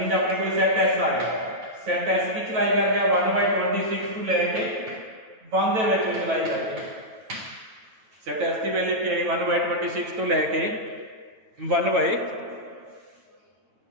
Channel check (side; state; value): left; late; 9.1 ms